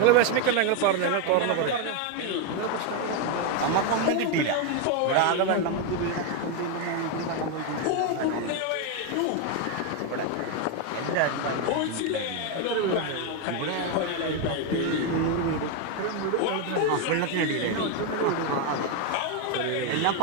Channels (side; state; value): both; different; correlation 0.02